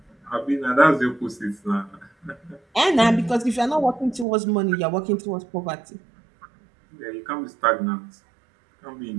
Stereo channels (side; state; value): left; drops out; at 4.2 s